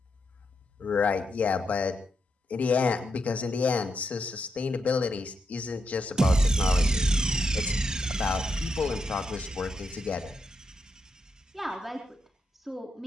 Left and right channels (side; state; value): both; normal; correlation 0.83